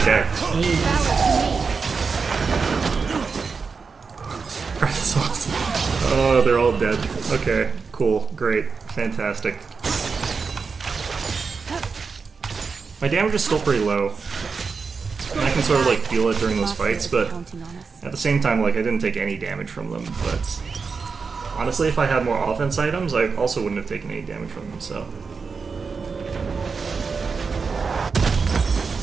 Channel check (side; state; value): left; quieter; 5.1 dB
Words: dead. That's awesome. Oh, they're all dead. Okay, cool, great, fantastic. My damage is still pretty low. And I can sort of like feel it during those fights, but at the same time, like I didn't take any damage from them. But honestly, if I had more offense items, I also wouldn't have taken any damage from them. So